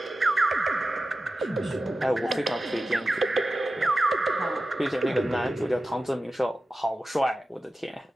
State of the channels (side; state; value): both; normal; correlation 0.94